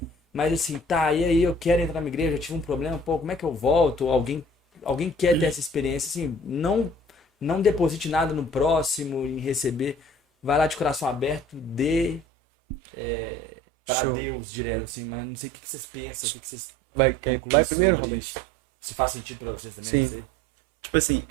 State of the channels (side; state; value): left; drops out; at 12.2 s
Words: Mas assim, tá, e aí eu quero entrar na igreja, eu tive um problema, pô, como é que eu volto? Ou alguém quer ter essa experiência, assim, não deposite nada no próximo em receber. Vai lá de coração aberto, dê para Show. Deus direto, assim, mas não sei o que vocês pensam, o que vocês concluem primeiro? sobre isso. Se faz sentido pra vocês também, não Sim. sei. Tipo assim,